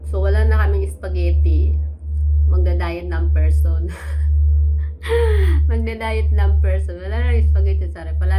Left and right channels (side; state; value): both; identical; correlation 1.00